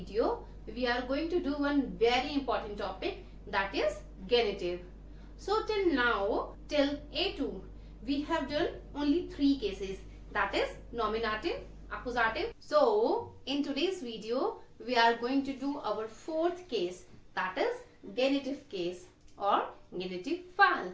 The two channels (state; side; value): identical; both; correlation 1.00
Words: we are going to do one very important topic, that is genitive. So till now, till A2 we have done only 3 cases, that is nominative, accusative. So in today's video we are going to do our 4th case, that is genitive case or genitive fall.